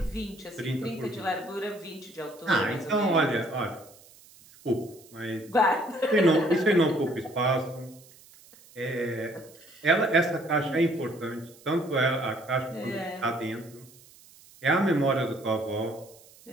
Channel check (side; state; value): right; noise; hiss, 24 dB below the sound